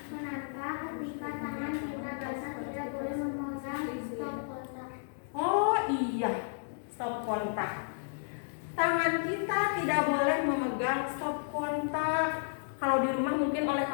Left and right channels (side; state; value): right; silent; digital silence